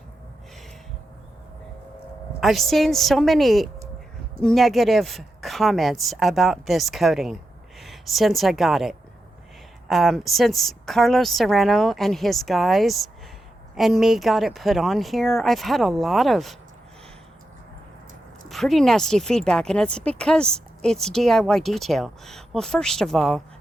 I've seen so many negative comments about this coating since I got it. Since Carlos Serrano and his guys and me got it put on here, I've had a lot of pretty nasty feedback, and it's because it's DIY detail. Well, first of all,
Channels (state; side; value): normal; both; correlation 0.87